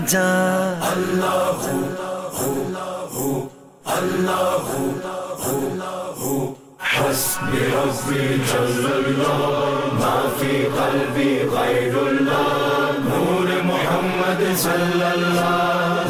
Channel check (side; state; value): both; identical; correlation 1.00